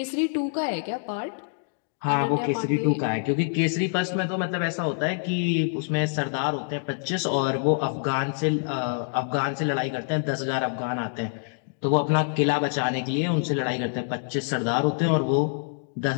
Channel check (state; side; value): silent; right; digital silence